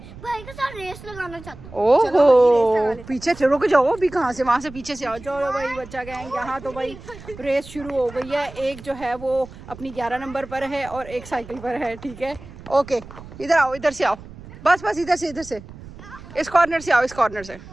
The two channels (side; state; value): right; noise; rumble, 16 dB below the sound